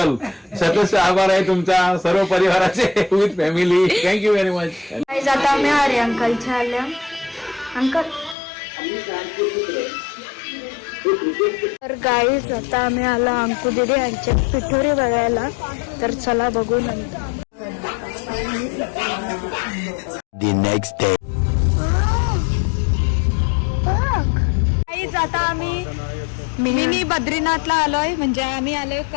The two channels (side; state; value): right; drops out; at 8.3 s